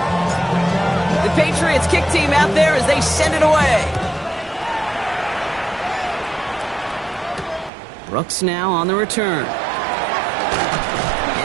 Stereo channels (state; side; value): drops out; left; at 7.7 s